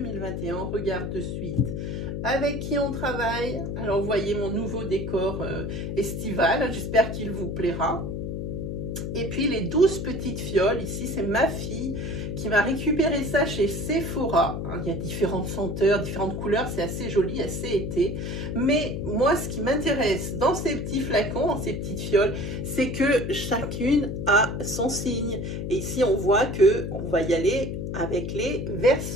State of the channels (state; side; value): noise; left; hum, 4 dB below the sound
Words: On regarde de suite avec qui on travaille. Alors, vous voyez mon nouveau décor estival. J'espère qu'il vous plaira. Et puis, les 12 petites fioles. Ici, c'est ma fille qui m'a récupéré ça chez Sephora. Il y a différentes senteurs, différentes couleurs. C'est assez joli, assez été. Mais moi, ce qui m'intéresse dans ces petits flacons, dans ces petites fioles, c'est que chacune a son signe. Et ici, on voit qu'on va y aller avec les